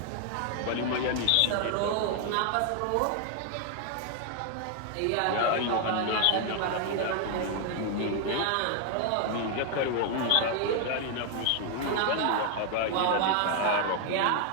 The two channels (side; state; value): both; different; correlation 0.00